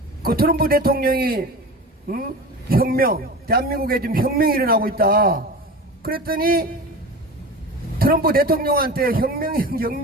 트럼프 대통령이 혁명, 대한민국에 지금 혁명이 일어나고 있다. 그랬더니 트럼프 대통령한테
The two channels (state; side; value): normal; both; correlation 0.32